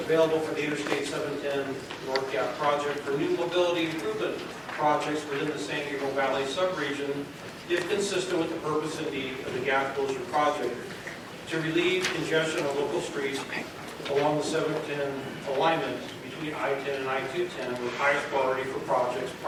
for the Interstate 710 North Gap project for new mobility improvement projects within the San Gabriel Valley subregion, if consistent with the purpose and need of the gap closure project, to relieve congestion on local streets along the 710 alignment between I-10 and I-210 with highest priority for projects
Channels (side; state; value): both; identical; correlation 1.00